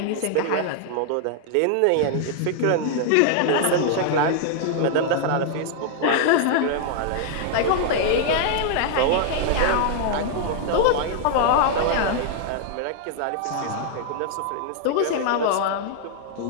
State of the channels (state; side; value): different; both; correlation 0.00